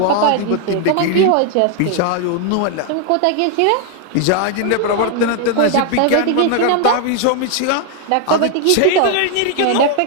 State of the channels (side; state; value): both; different; correlation 0.00